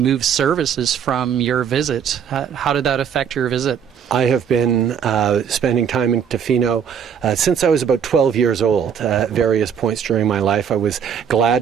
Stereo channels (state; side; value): quieter; left; 7.8 dB